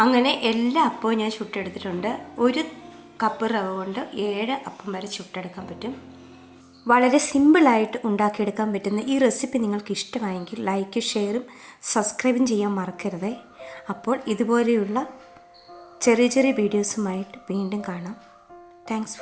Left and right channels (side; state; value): both; identical; correlation 1.00